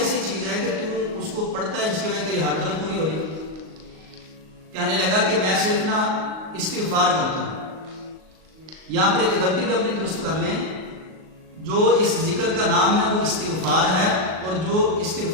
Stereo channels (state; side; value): late; left; 38 ms